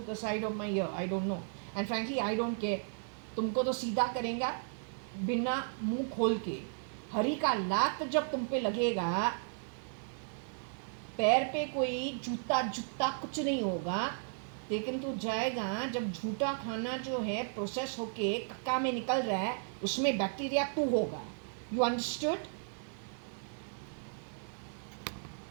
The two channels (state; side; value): silent; left; 54 dB below the other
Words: the side of my ear. I don't know. And frankly, I don't care. तुमको तो सीधा करेंगे बिना मुंह खोल के. हरी का लात जब तुम पे लगेगा, पैर पे कोई जूता कुछ नहीं होगा, लेकिन तू जाएगा जब झूठा खाना जो है प्रोसेस होके कक्का में निकल रहा है, उसमें बैक्टीरिया तू होगा. You understood?